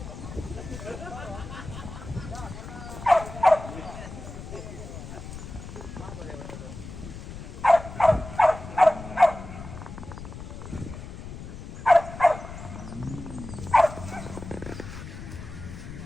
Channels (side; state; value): left; noise; rumble, 11 dB below the sound